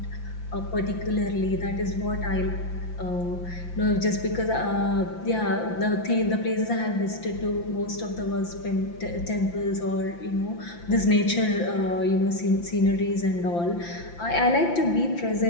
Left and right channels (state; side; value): late; right; 5.8 ms